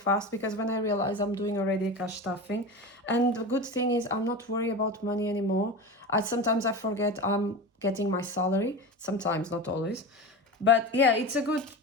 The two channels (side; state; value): both; normal; correlation 0.27